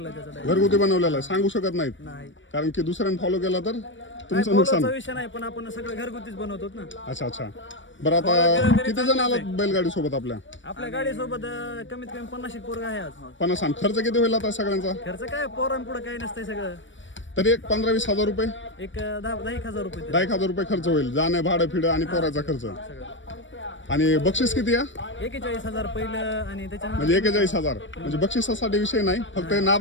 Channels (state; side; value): late; right; 0.55 ms